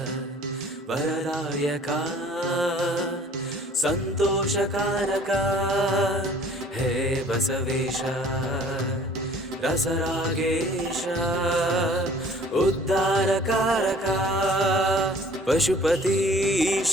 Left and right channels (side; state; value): both; normal; correlation 0.53